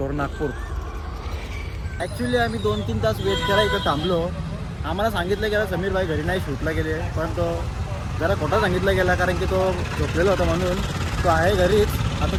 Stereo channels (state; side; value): identical; both; correlation 1.00